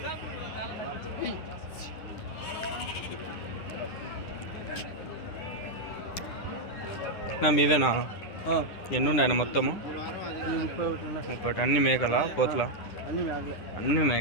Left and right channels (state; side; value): late; right; 10 ms